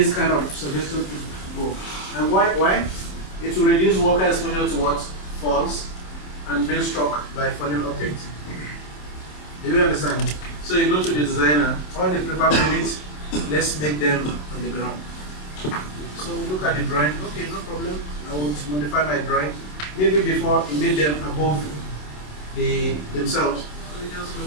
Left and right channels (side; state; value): right; late; 27 ms